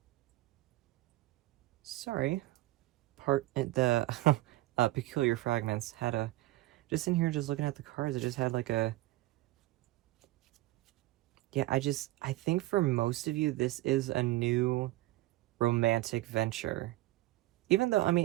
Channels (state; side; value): quieter; left; 17.9 dB